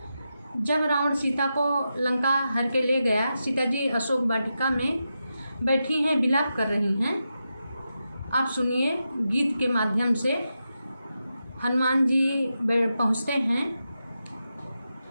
जब रावण सीता को लंका हर के ले गया, सीता जी अशोक वाटिका में बैठी हैं, विलाप कर रही हैं। आप सुनिए, गीत के माध्यम से हनुमान जी पहुँचते हैं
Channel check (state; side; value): inverted; both; correlation -0.88